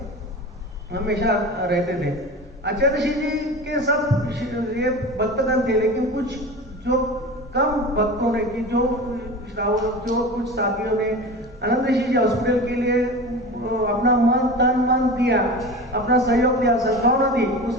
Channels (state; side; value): normal; both; correlation 0.32